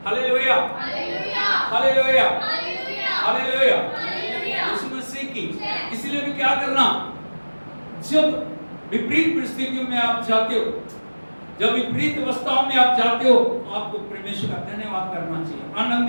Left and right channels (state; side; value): inverted; both; correlation -1.00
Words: Hallelujah, hallelujah, hallelujah. यीशु मसीह की। इसलिए भी क्या करना, जब विपरीत परिस्थितियों में आप जाते हो, जब विपरीत अवस्थाओं में आप जाते हो, आपको परमेश्वर का धन्यवाद करना चाहिए,